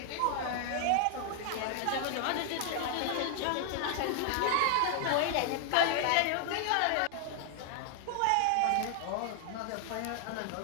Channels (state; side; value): different; both; correlation 0.00